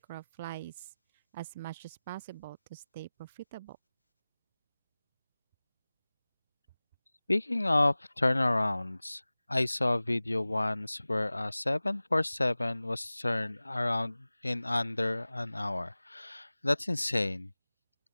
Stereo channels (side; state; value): both; inverted; correlation -0.99